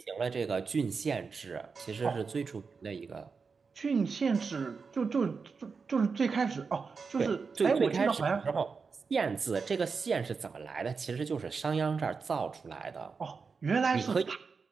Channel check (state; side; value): quieter; left; 5.1 dB